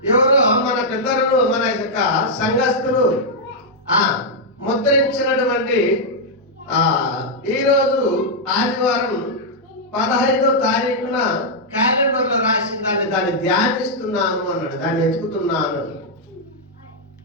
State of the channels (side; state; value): both; normal; correlation -0.05